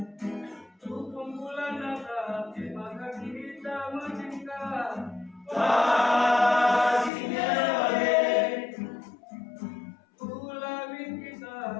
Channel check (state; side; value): drops out; right; at 7.1 s